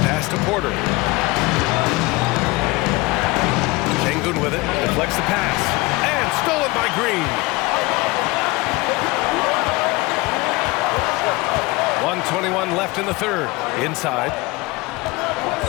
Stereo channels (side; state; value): right; quieter; 22.6 dB